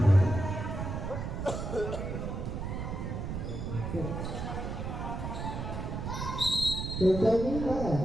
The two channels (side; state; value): right; noise; rumble, 4 dB below the sound